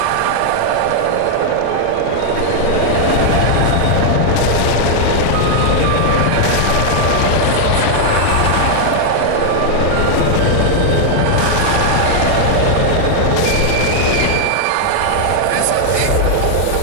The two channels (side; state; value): both; different; correlation 0.00